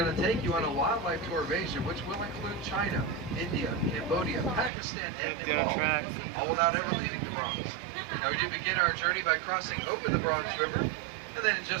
to take you on a wildlife tour of Asia, which will include China, India, Cambodia, Pakistan, and Nepal, all without ever leaving the Bronx. Now, we do begin our journey by crossing over the Bronx River, and then in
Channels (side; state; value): left; drops out; at 4.7 s